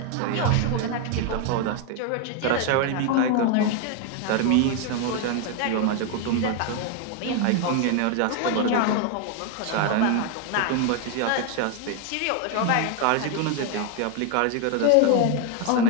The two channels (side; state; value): both; different; correlation 0.01